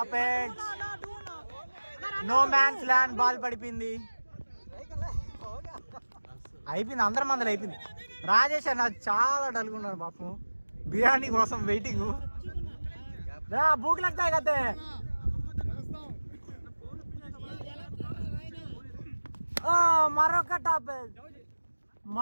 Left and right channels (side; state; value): both; inverted; correlation -1.00